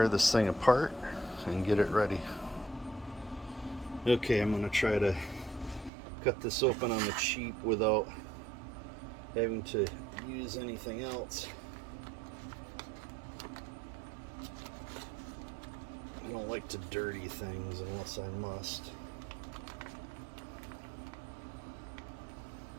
this thing apart and get it ready. Okay, I'm gonna try to cut this open on the cheap without having to use anything else. I don't like to dirty things unless I must.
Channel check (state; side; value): drops out; left; at 5.9 s